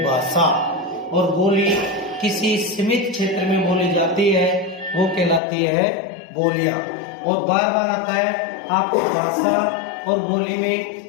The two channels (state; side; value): drops out; right; at 5.4 s